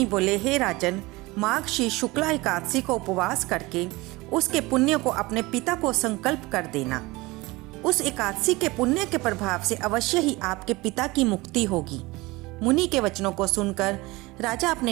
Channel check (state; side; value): quieter; left; 21.8 dB